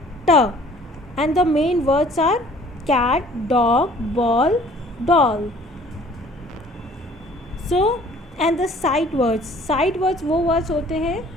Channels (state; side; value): normal; both; correlation 0.53